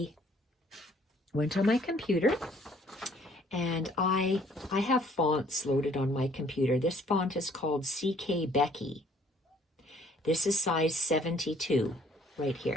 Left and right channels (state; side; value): normal; both; correlation 0.60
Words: went on my computer, and I have fonts loaded on my computer. This font is called CK Becky. This is size 72 right